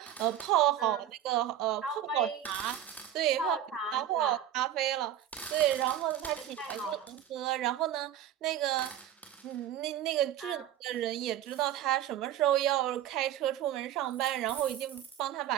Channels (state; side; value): quieter; left; 11.1 dB